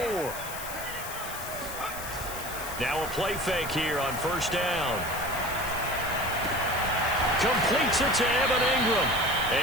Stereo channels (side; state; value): left; noise; hiss, 10 dB below the sound